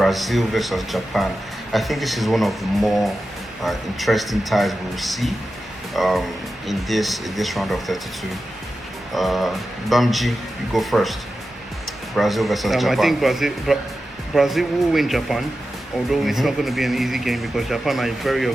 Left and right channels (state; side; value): normal; both; correlation 0.92